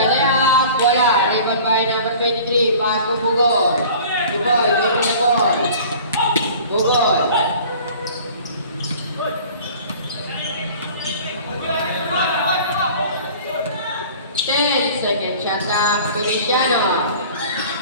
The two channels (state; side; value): inverted; both; correlation -0.45